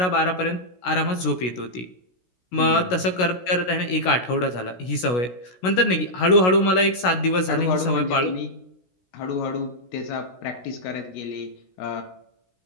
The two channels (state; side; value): late; right; 16 ms